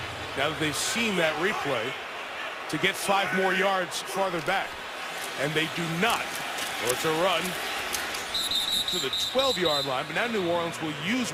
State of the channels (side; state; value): both; identical; correlation 1.00